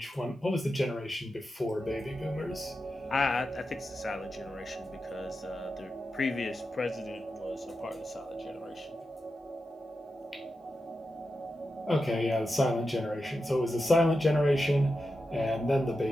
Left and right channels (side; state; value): both; normal; correlation 0.90